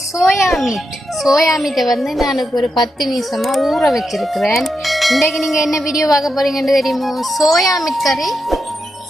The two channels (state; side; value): normal; both; correlation 0.86